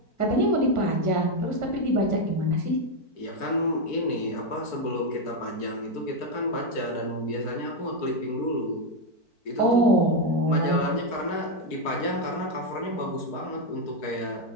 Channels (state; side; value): late; right; 4.5 ms